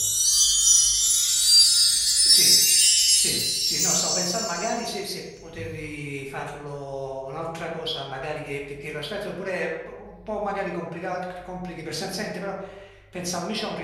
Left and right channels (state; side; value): identical; both; correlation 1.00